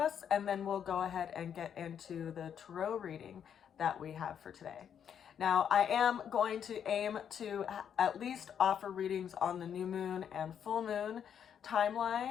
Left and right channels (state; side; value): quieter; right; 8.4 dB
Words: And then we'll go ahead and get into the tarot reading that we have for today. Now, I am going to aim to at least offer readings on the new moon and full moon